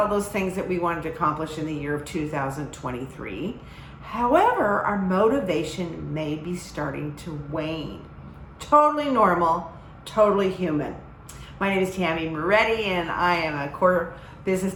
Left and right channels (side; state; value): both; identical; correlation 1.00